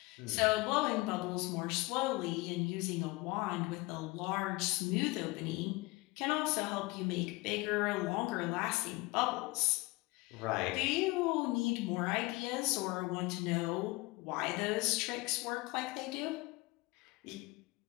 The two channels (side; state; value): right; quieter; 23.2 dB